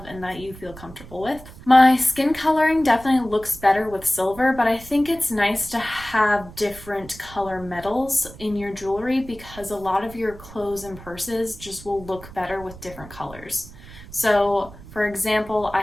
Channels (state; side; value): noise; right; rumble, 17 dB below the sound